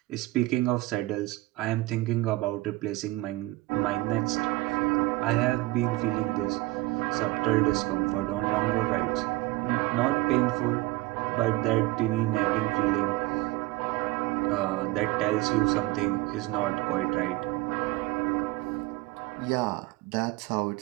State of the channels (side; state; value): left; quieter; 19.6 dB